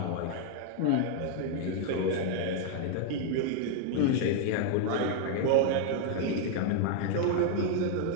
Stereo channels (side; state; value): both; different; correlation 0.00